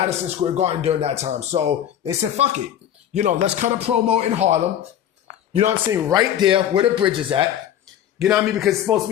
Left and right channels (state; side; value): quieter; right; 10.6 dB